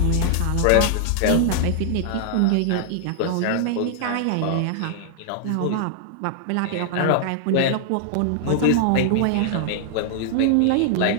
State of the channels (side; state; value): both; different; correlation -0.01